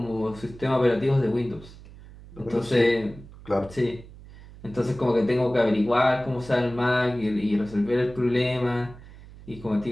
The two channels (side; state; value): right; noise; hum, 19 dB below the sound